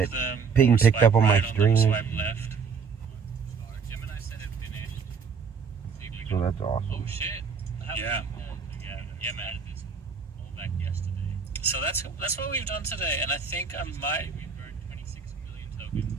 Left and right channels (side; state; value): left; quieter; 5.7 dB